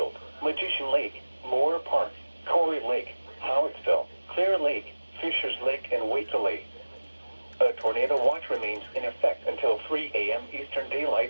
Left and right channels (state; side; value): inverted; both; correlation -1.00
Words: Magician Lake, Moore Park, Corey Lake, Howittsville, Clear Lake, Fishers Lake, and Waitla Lake. A tornado watch remains in effect until 3 a.m. Eastern